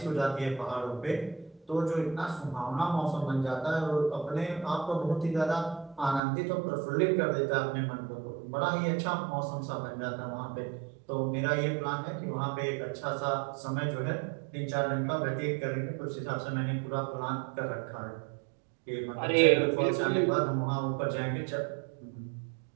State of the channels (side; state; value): left; drops out; at 6.2 s